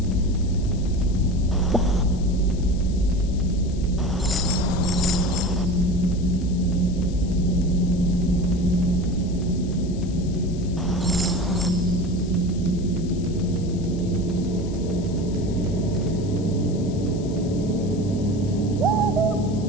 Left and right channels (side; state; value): left; noise; hiss, 21 dB below the sound